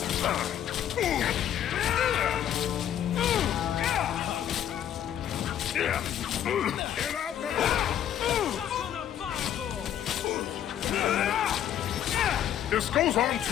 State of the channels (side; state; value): right; quieter; 10.4 dB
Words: This goes on